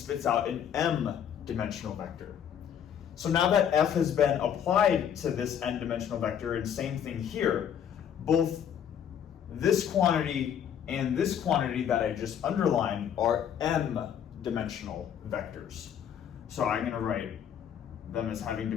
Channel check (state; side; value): quieter; right; 8.9 dB